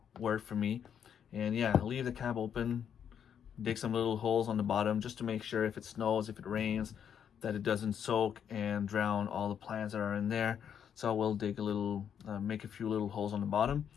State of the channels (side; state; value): right; quieter; 8.4 dB